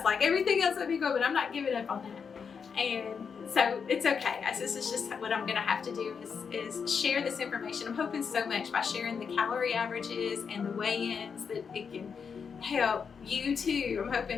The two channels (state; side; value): quieter; right; 6.2 dB